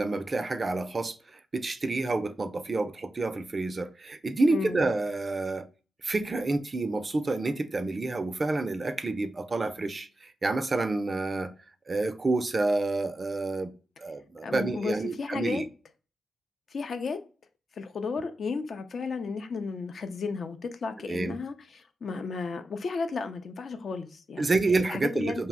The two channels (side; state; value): both; normal; correlation 0.91